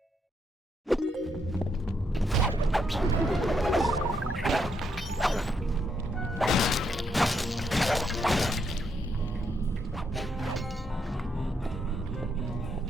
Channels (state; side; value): normal; both; correlation 0.77